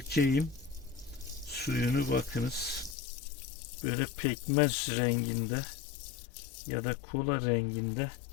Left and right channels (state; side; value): drops out; right; at 3.0 s